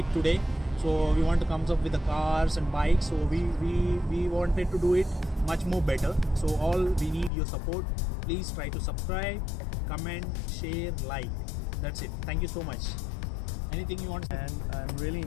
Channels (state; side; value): drops out; right; at 7.3 s